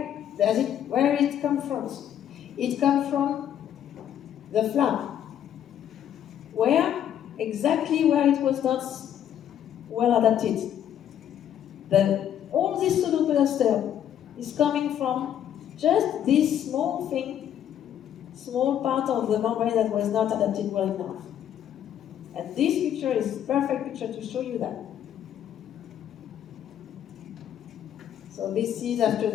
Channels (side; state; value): right; quieter; 10.1 dB